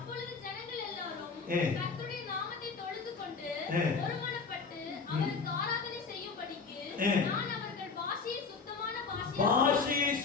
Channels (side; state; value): right; quieter; 4.9 dB